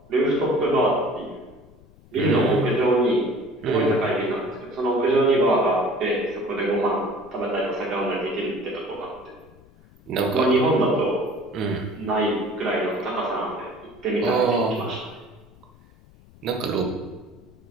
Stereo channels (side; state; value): left; noise; rumble, 26 dB below the sound